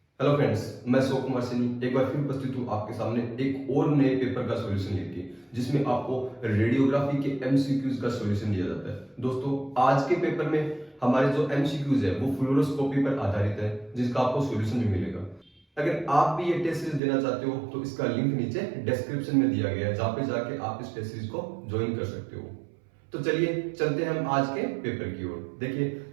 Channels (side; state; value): left; drops out; at 17.0 s